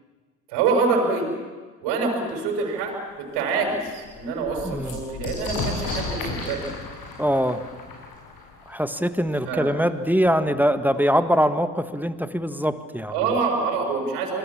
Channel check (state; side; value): normal; both; correlation 0.59